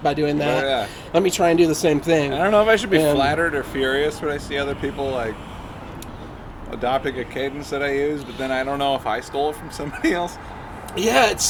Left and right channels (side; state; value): both; identical; correlation 1.00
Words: by doing that. Yeah. Let me try and do the same thing. I don't know if I should be And- flattered or furious when I see other people like adopting a cadence that I use, but then I don't know if I stole it from somebody else. Yeah, it's